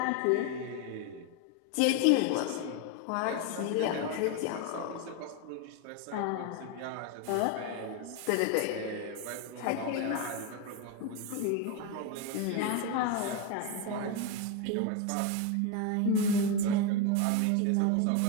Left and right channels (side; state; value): both; different; correlation 0.02